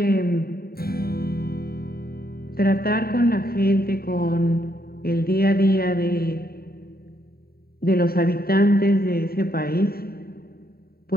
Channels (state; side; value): late; right; 0.44 ms